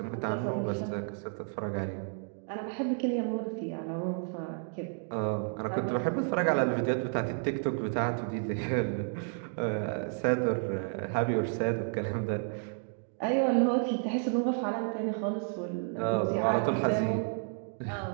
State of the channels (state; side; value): silent; left; 57 dB below the other